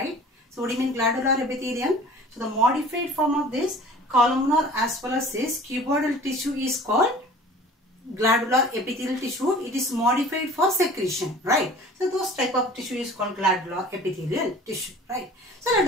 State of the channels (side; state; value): both; normal; correlation 0.45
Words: So what do you mean glandular epithelium? So the modified form of this columnar as well as this cuboidal tissue is called glandular epithelial tissue. It is modified for secretion, right? So those type of tissue is called glandular epithelial tissue, right? So let